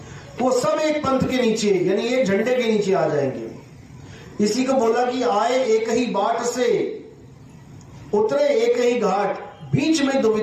वो सब एक पंथ के नीचे, यानी एक झंडे के नीचे आ जाएंगे। इसी को बोला कि आए एक ही बाट से, उतरे एक ही घाट, बीच में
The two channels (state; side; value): identical; both; correlation 1.00